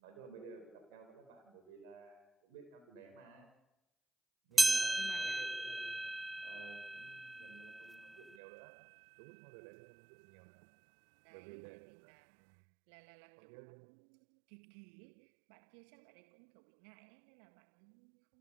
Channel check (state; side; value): drops out; left; at 8.3 s